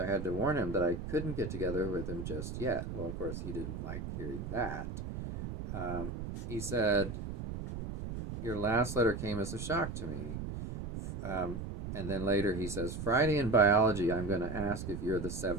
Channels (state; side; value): noise; right; rumble, 6 dB below the sound